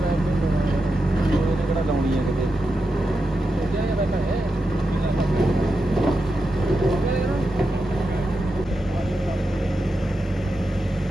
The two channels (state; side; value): normal; both; correlation 0.88